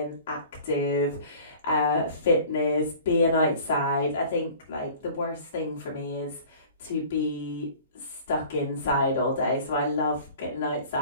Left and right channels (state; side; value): inverted; both; correlation -0.46